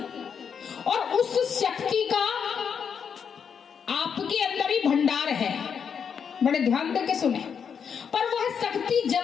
और उस शक्ति का आपके अंदर ही भंडार है, बड़े ध्यान देके सुने। पर वह शक्ति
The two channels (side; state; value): right; quieter; 7.0 dB